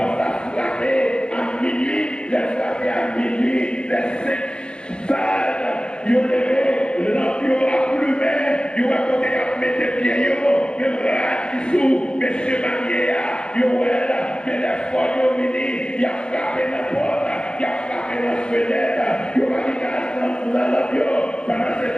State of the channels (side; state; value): right; late; 0.051 ms